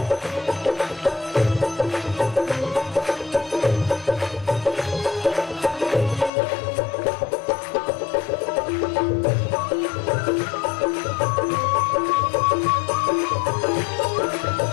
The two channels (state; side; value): drops out; right; at 6.3 s